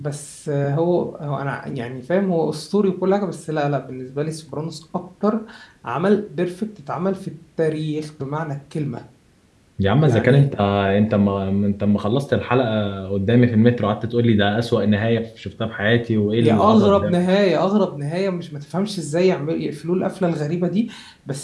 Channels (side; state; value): both; identical; correlation 1.00